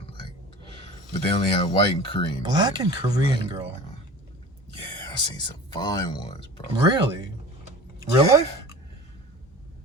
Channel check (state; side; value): normal; both; correlation 0.38